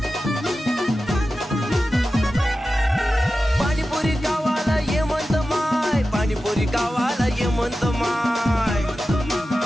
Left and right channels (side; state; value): both; normal; correlation 0.93